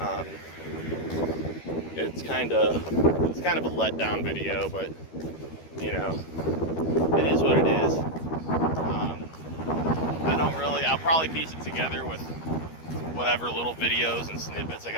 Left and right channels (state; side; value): late; right; 13 ms